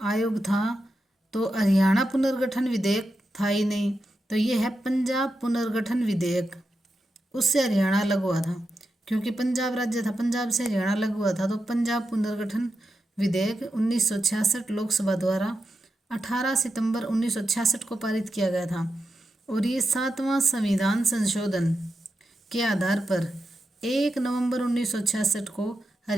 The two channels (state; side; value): normal; both; correlation 0.88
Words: था। तो हरियाणा पुनर्गठन विधेयक था ही नहीं, तो ये है पंजाब पुनर्गठन विधेयक। उससे हरियाणा अलग हुआ था, क्योंकि पंजाब राज्य था, पंजाब से हरियाणा अलग हुआ था। तो पंजाब पुनर्गठन विधेयक 1966 लोकसभा द्वारा 18 सितंबर 1966 को पारित किया गया था। और ये 7वां संविधान संशोधन के आधार पर 1 नवंबर 1966 को